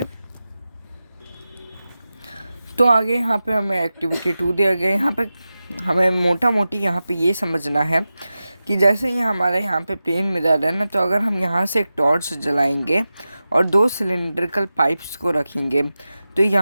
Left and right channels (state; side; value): inverted; both; correlation -0.94